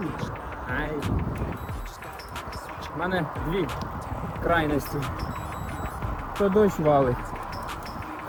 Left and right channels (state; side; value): identical; both; correlation 1.00